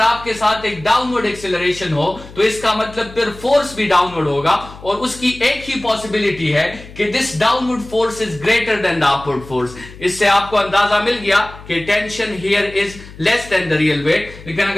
साथ एक डाउनवर्ड एक्सेलरेशन हो, तो इसका मतलब फिर फोर्स भी डाउनवर्ड होगा, और उसकी एक ही पॉसिबिलिटी है कि this downward force is greater than the upward force. इससे आपको अंदाजा मिल गया कि tension here is less than the real weight. लेकिन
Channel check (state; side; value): noise; left; hum, 17 dB below the sound